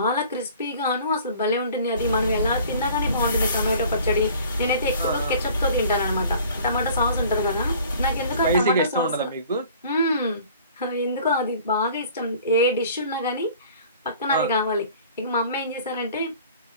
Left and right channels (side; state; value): both; inverted; correlation -0.49